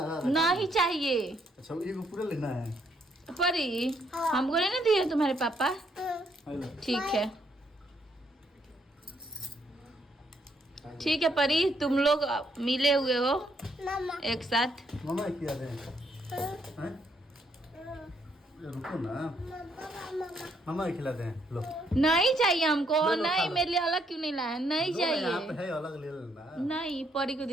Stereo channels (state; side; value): normal; both; correlation 0.72